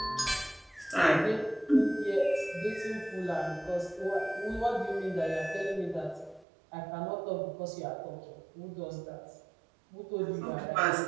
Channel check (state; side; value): drops out; left; at 6.5 s